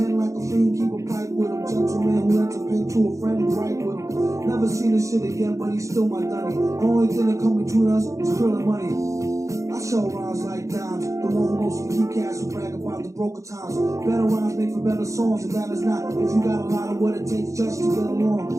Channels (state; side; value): late; left; 0.15 ms